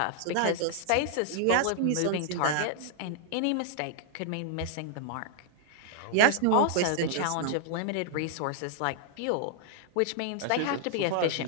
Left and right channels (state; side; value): different; both; correlation -0.01